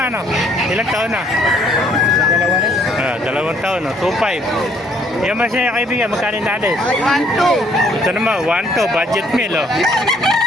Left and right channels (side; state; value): both; normal; correlation 0.64